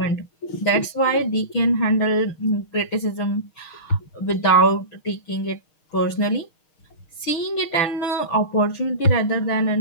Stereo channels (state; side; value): late; right; 6.3 ms